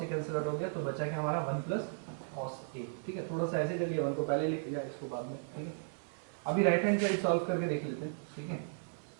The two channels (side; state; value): left; silent; digital silence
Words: ए कैंसिल आउट हो गया, तो बचा क्या हमारा 1 प्लस कॉस ए, ठीक है। थोड़ा सा ऐसे कर लिया, 1 को पहले लिख लिया, इसको बाद में, ठीक है। अभी राइट हैंड साइड सॉल्व करके देख लेते हैं, ठीक है।